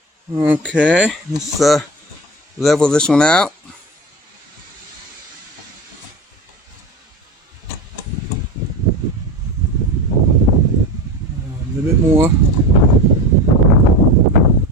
Okay, let's level this one out. A little bit more.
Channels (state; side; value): normal; both; correlation 0.27